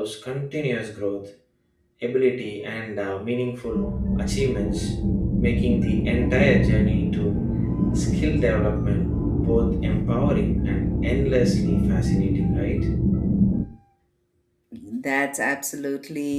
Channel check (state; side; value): identical; both; correlation 1.00